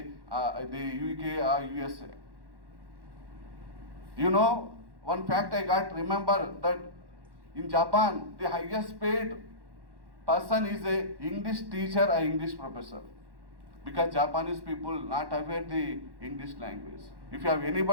UK or USA. You know, one fact I got, remember that in Japan, the highest paid person is a English teacher or English professor, because Japanese people not aware the English language. If you have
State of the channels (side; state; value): left; late; 1.1 ms